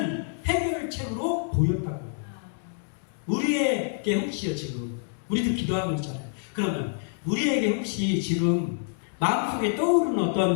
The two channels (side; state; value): right; silent; digital silence